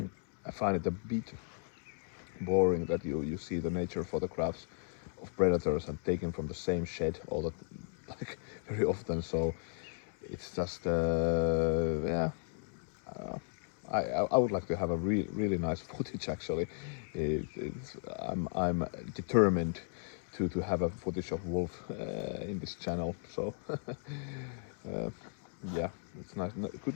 find it a bit boring that you see the nature photographs of predators and taken from the same shed all the like very often. So it's just yeah. Uh, I would like to have a really nice footage actually. I'm determined to have a footage of wolf in this channel. So yeah, it's nice,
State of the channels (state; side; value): silent; right; 54 dB below the other